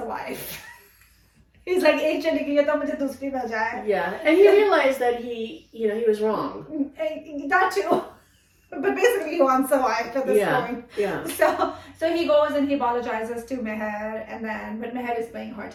wife. He's like, yeah. And he realized that he was wrong. That too. But basically he wants a wife at this point. Yeah. So he goes and he apologizes to Mahir, but Mahir is playing hard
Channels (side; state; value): both; identical; correlation 1.00